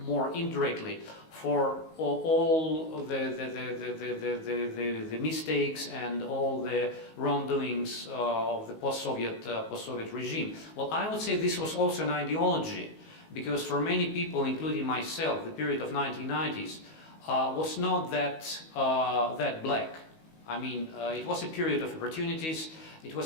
more indirectly, for all the mistakes and all the wrongdoings of the post-Soviet regime. Well, I would say this was also an ideology, because for many people, including myself, the period of 1990s was not that black. I mean, it was a period of opportunities. It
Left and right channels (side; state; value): right; late; 19 ms